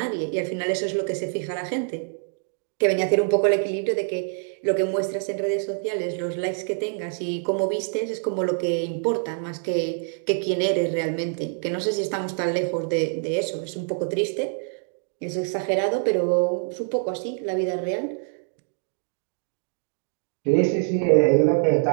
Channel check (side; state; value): left; silent; digital silence